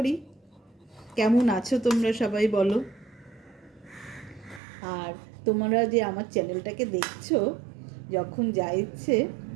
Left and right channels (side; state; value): left; drops out; at 4.6 s